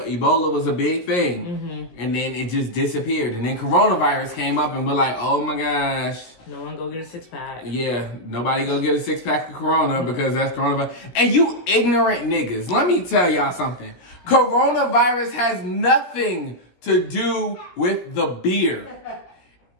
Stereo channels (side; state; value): right; late; 17 ms